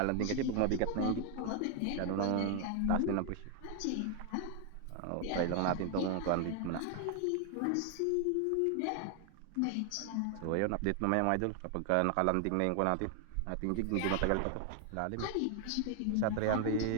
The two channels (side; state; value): both; different; correlation 0.00